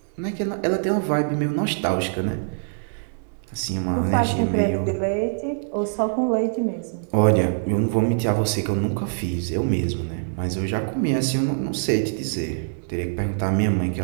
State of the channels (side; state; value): left; silent; digital silence